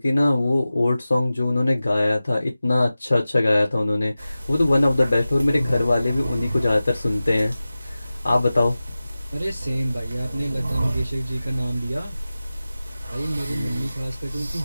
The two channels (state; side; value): inverted; both; correlation -0.96